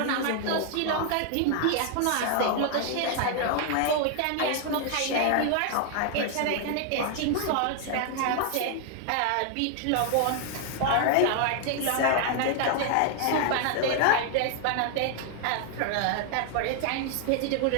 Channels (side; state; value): both; different; correlation 0.00